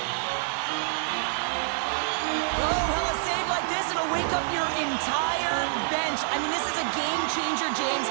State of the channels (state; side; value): silent; left; 60 dB below the other